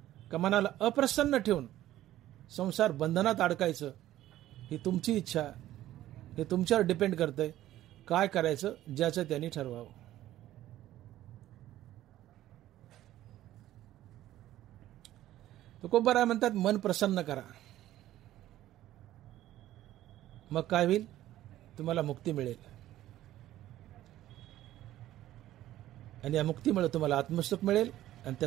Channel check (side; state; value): left; quieter; 13.9 dB